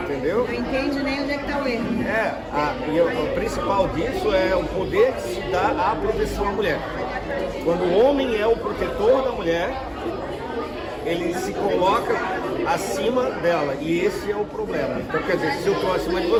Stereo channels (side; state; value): both; identical; correlation 1.00